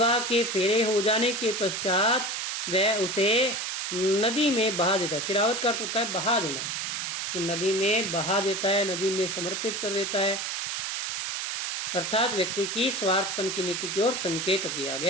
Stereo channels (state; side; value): noise; right; hiss, 3 dB below the sound